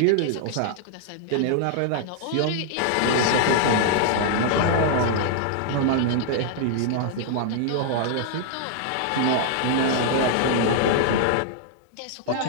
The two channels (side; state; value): both; different; correlation 0.00